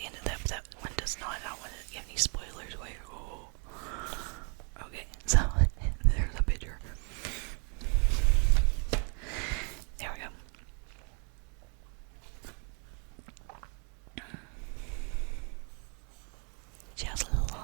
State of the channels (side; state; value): left; quieter; 38.3 dB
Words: end of that, but that one does not. I don't want to give any spoilers away. Oh. Okay, so there's a picture. There we go. She has